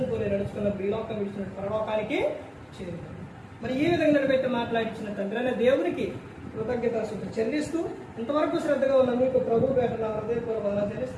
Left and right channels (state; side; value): identical; both; correlation 1.00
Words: పోలి నడుచుకున్న ఈ లోకం ఇచ్చిన పరలోకానికి చేరుతారు. మరి ఈ విధంగా నిలబెట్టి మాట్లాడించిన తండ్రి అనే దేవునికి కృతజ్ఞతాస్తుతులు చెల్లిస్తూ ఇంతవరకు శ్రద్ధగా ఉన్న మీకు ప్రభు పేట హృదయపూర్వకంగా